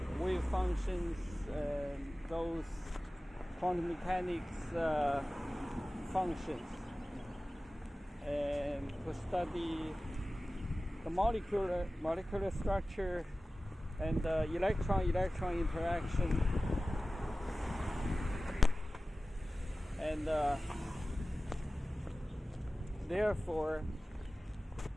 wave functions, those quantum mechanics functions, and to study the molecular structure and electron-electron interaction, and therefore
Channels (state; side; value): normal; both; correlation 0.97